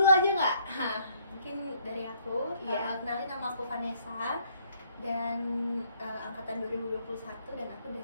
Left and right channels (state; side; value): inverted; both; correlation -0.65